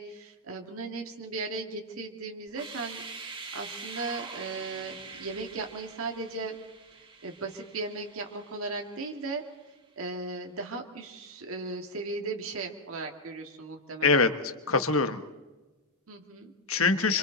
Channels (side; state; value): both; normal; correlation -0.01